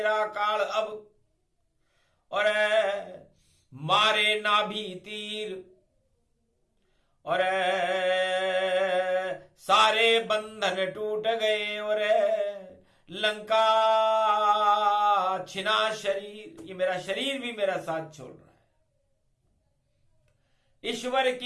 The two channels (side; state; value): both; identical; correlation 1.00